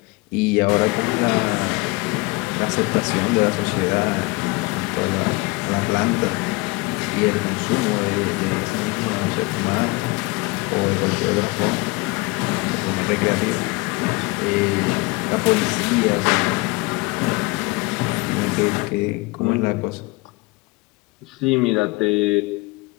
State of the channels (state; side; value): quieter; right; 24.6 dB